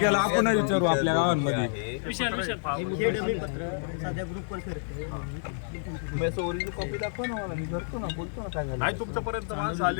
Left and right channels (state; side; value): silent; right; digital silence